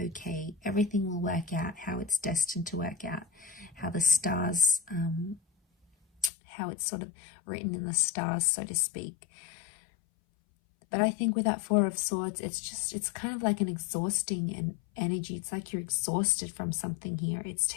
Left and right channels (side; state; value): right; drops out; at 6.3 s